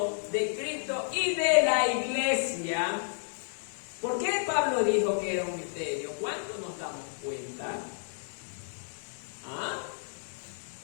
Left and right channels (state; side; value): silent; right; digital silence